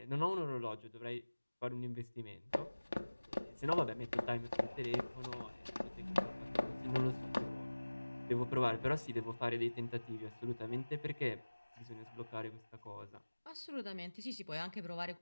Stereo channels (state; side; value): inverted; both; correlation -1.00